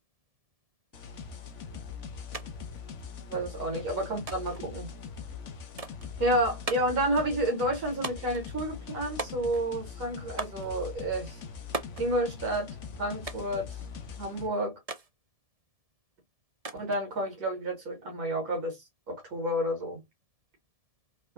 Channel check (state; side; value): late; left; 1.7 ms